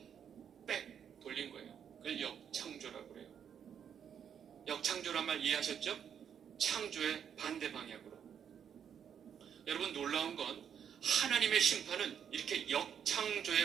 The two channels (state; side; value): quieter; left; 8.3 dB